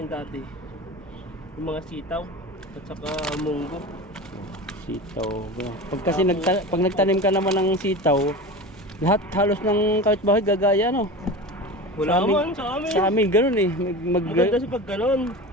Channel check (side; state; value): both; normal; correlation 0.30